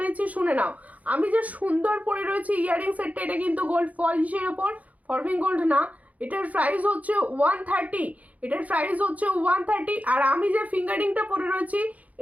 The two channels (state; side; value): late; left; 0.072 ms